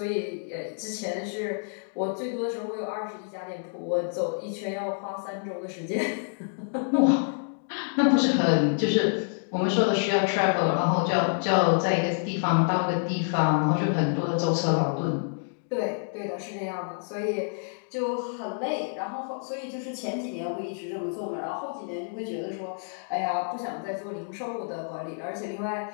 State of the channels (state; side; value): silent; right; digital silence